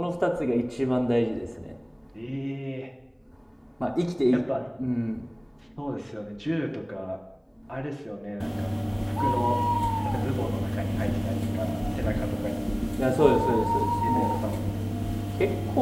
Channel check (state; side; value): identical; both; correlation 1.00